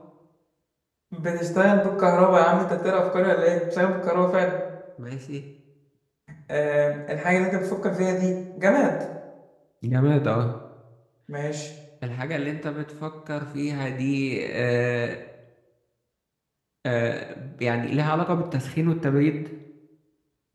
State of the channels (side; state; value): both; identical; correlation 1.00